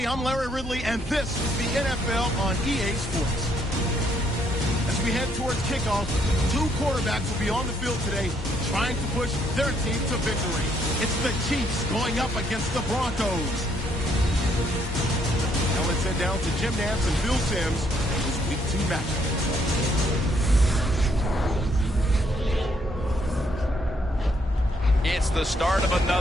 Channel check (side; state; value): both; normal; correlation 0.70